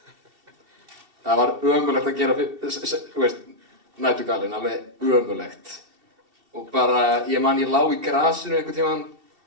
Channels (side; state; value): left; late; 2.7 ms